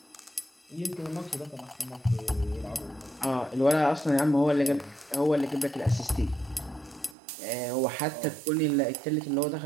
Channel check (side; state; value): left; drops out; at 7.2 s